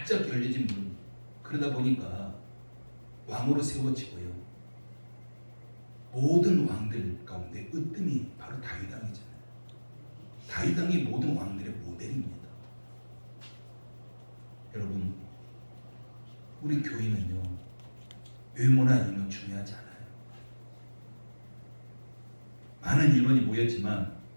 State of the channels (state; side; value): inverted; both; correlation -1.00